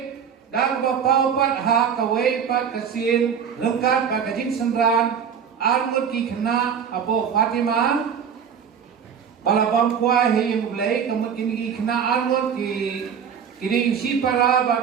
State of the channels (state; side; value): quieter; left; 7.5 dB